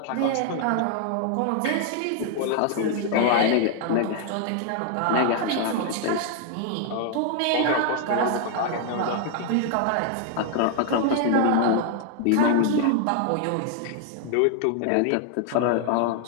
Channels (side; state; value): both; different; correlation 0.00